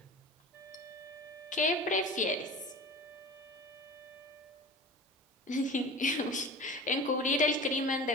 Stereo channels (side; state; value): both; normal; correlation 0.36